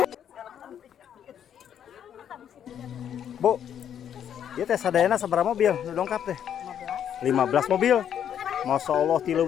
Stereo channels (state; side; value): quieter; right; 9.3 dB